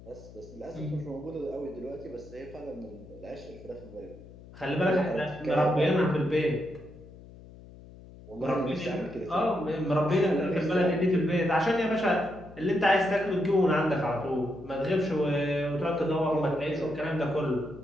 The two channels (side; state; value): left; noise; hum, 19 dB below the sound